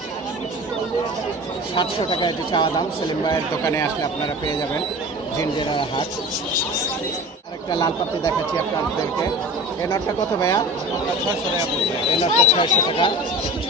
700 টাকা এটি চাওয়া দাম। সেলিম ভাইয়ের দোকানে আসলে আপনারা পেয়ে যাবেন, জিঞ্জিরার হাট। আরেকটা লাল পাত্রি দেখাচ্ছি আপনাদেরকে। এই নটটা কত ভাইয়া? 600 টাকা। এই নটটা 600 টাকা।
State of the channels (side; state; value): both; normal; correlation 0.36